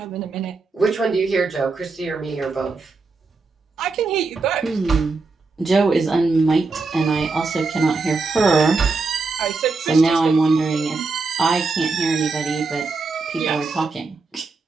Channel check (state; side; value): quieter; left; 4.0 dB